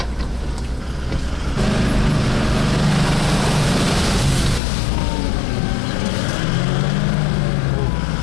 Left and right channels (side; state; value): right; drops out; at 4.6 s